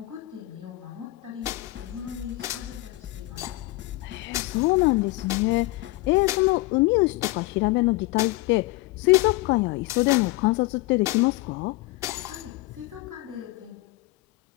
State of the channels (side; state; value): right; quieter; 20.7 dB